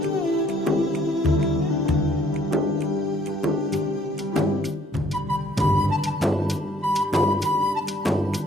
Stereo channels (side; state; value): both; normal; correlation 0.63